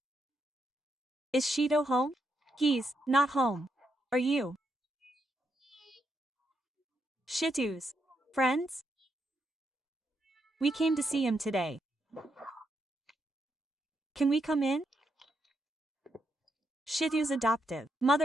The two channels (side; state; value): both; normal; correlation 0.80